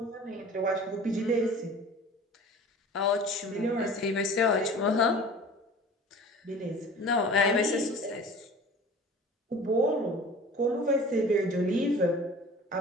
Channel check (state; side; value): normal; both; correlation 0.43